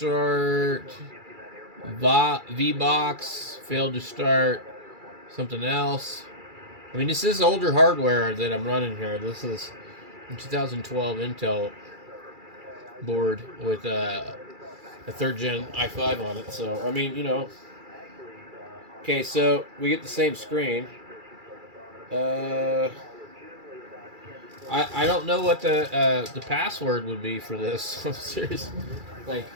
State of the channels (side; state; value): left; late; 2.3 ms